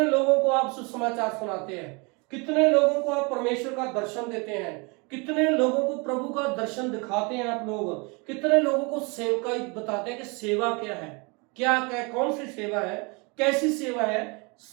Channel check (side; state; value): left; quieter; 30.1 dB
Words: लोगों को आप सुसमाचार सुनाते हैं? कितने लोगों को आप परमेश्वर का दर्शन देते हैं? कितने लोगों को प्रभु का दर्शन दिखाते हैं आप लोग? कितने लोगों को सेवकाई बताते हैं कि सेवा क्या है, क्या क्या कौन सी सेवा है, कैसी सेवा है?